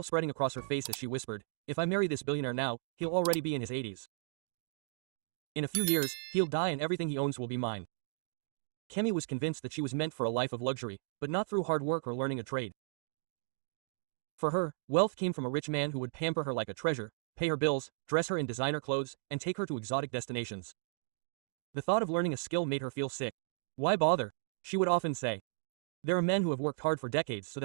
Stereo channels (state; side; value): silent; left; digital silence